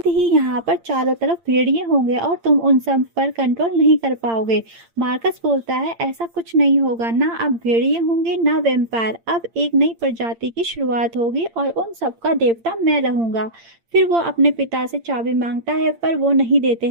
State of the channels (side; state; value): left; late; 8.8 ms